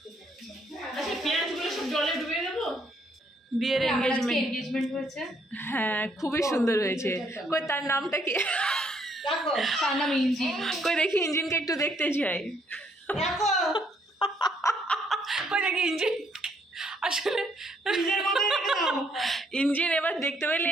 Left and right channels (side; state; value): both; normal; correlation 0.69